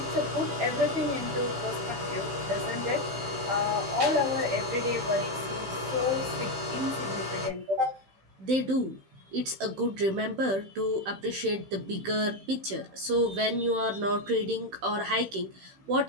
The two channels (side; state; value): left; late; 15 ms